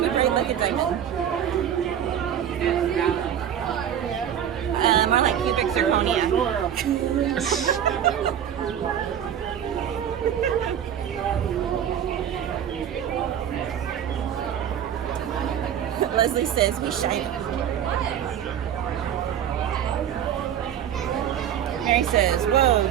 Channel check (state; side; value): quieter; left; 9.5 dB